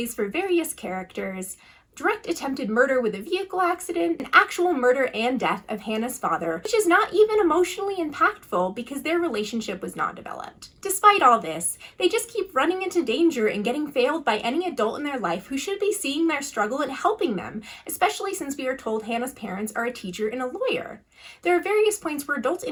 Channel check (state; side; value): identical; both; correlation 1.00